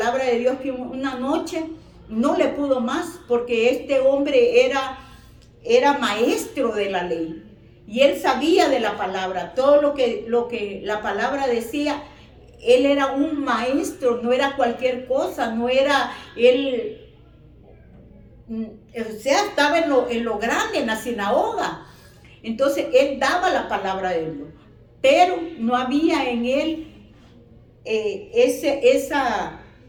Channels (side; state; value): both; identical; correlation 1.00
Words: de Dios, que una noche no le pudo más, porque este hombre era maestro de la ley y él sabía de la palabra, todo lo que la palabra decía. Él era un maestro, no era cualquier cosa, no era él, o sea, estaba en lo grande, en la sinagoga. Entonces él daba la palabra de Dios, pero no había en él